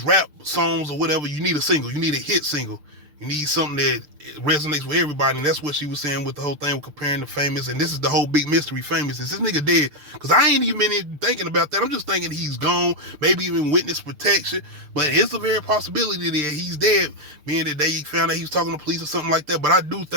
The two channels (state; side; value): late; left; 6.6 ms